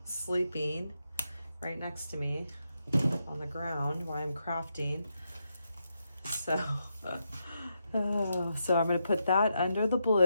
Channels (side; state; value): both; inverted; correlation -0.83